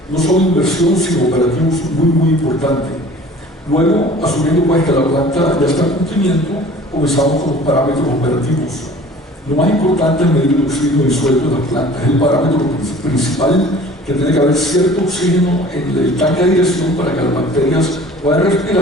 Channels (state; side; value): normal; both; correlation 0.47